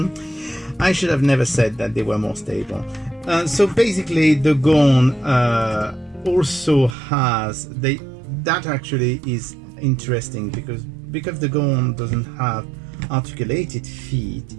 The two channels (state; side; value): drops out; left; at 7.0 s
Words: I should have never said that they were more stable. So basically the Gorn also has, that actually is interesting, because the Gorn doesn't have articulated feet,